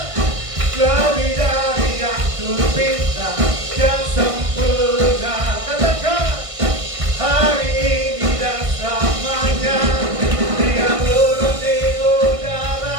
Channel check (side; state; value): left; late; 1.5 ms